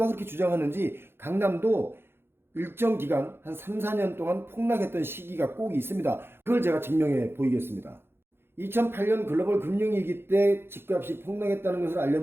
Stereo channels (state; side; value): late; left; 0.11 ms